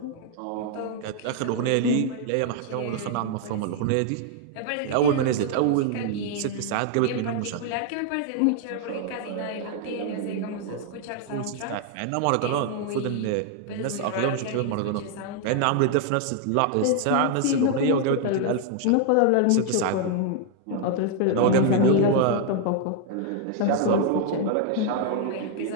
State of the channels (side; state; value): both; different; correlation 0.00